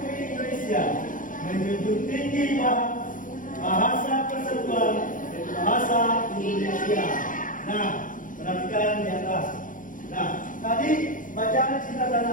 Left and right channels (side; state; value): right; late; 0.39 ms